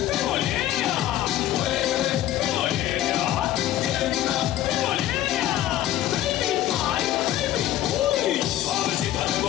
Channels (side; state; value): right; quieter; 13.1 dB